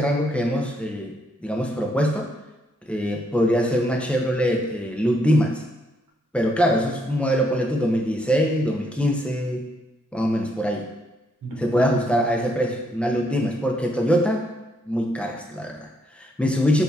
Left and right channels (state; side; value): normal; both; correlation 0.74